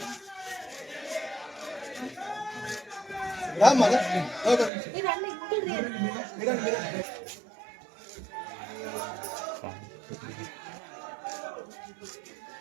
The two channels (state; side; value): drops out; left; at 4.7 s